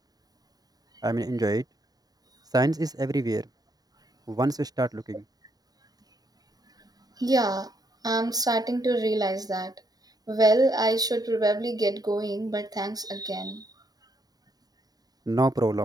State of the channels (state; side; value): late; left; 0.18 ms